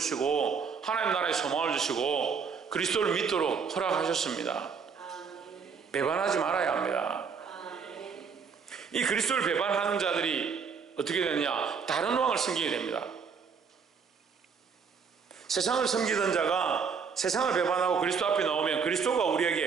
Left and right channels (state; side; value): quieter; left; 6.0 dB